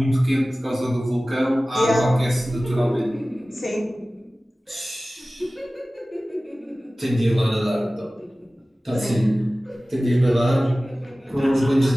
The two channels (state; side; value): normal; both; correlation 0.97